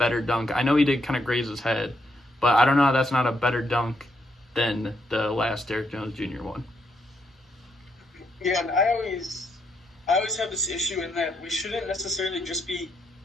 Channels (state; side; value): normal; both; correlation 0.77